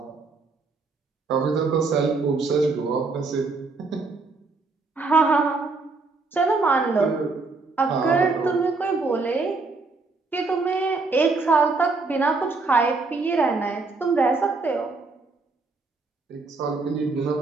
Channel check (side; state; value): left; quieter; 3.9 dB